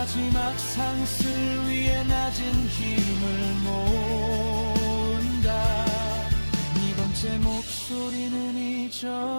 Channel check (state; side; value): inverted; both; correlation -1.00